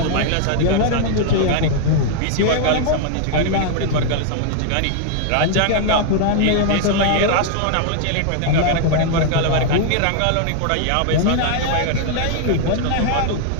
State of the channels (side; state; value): both; different; correlation 0.00